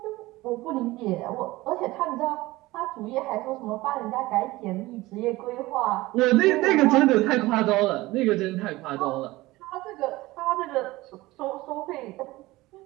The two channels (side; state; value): left; quieter; 19.3 dB